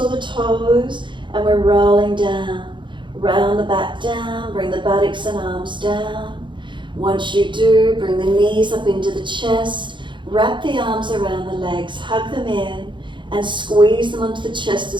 the toes and we're rolling down. Round the back down, bring the buttocks and arms down. Once you do, bring the knees up into the chest, wrap the arms around the legs, hug them in and squeeze them onto the chest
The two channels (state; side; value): late; left; 0.23 ms